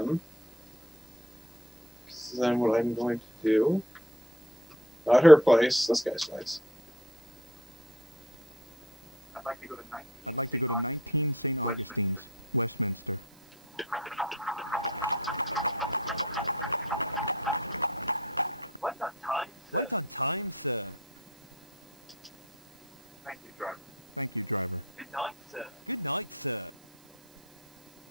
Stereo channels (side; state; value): right; noise; hiss, 29 dB below the sound